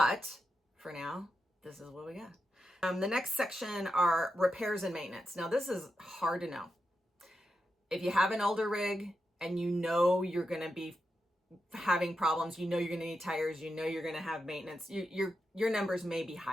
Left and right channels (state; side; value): normal; both; correlation 0.87